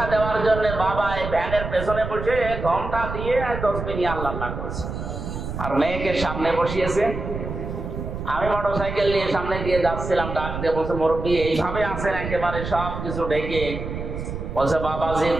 দেওয়ার জন্য বাবা এই ভ্যানের পেছনে বসে ঘন্টা দিয়ে 10 মিনিট আল্লাহ করছে, আর মেয়েকে সামনে বসিয়েছে। আমি মোটরসাইকেল নিয়ে সামনে দিয়ে যাচ্ছিলাম, ডাক দিয়ে বলছে, মুরব্বী এইভাবে আছেন একেবারে সব কিছু ঢেকে? বলছে, বাবাজি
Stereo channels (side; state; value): right; noise; rumble, 6 dB below the sound